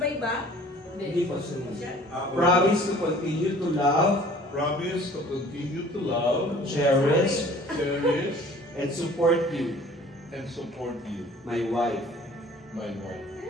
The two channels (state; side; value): normal; both; correlation 0.50